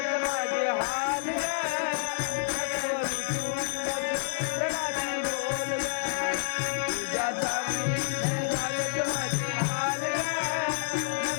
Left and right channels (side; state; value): right; silent; digital silence